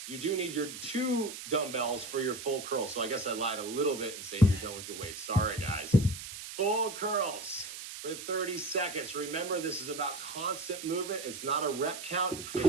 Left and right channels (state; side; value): noise; right; hiss, 10 dB below the sound